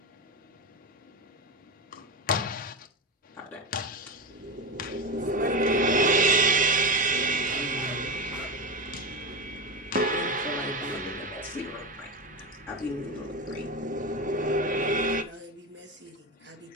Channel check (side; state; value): both; normal; correlation 0.18